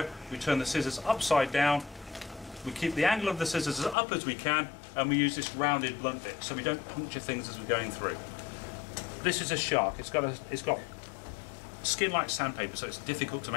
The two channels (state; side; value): drops out; right; at 4.0 s